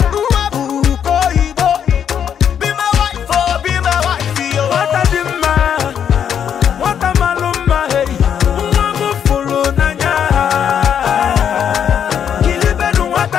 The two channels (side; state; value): right; quieter; 8.5 dB